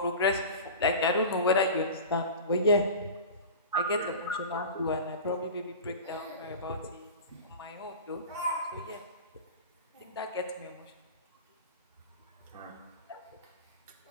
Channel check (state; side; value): inverted; both; correlation -0.33